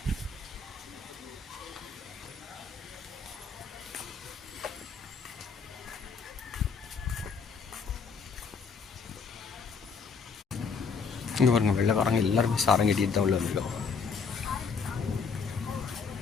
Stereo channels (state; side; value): quieter; right; 5.3 dB